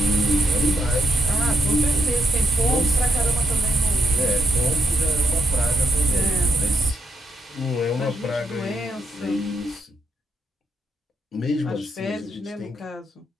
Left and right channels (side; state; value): both; normal; correlation 0.79